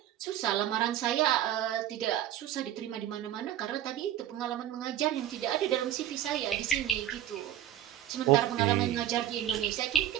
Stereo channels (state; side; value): quieter; left; 11.6 dB